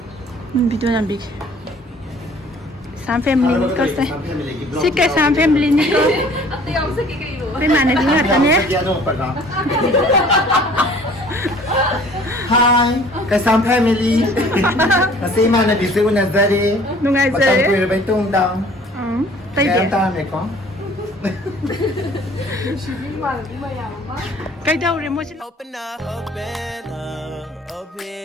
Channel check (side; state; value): both; normal; correlation 0.52